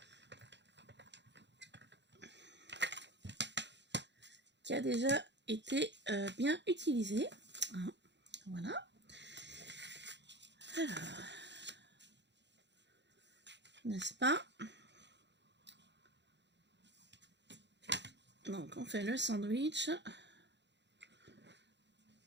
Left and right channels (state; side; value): late; left; 0.51 ms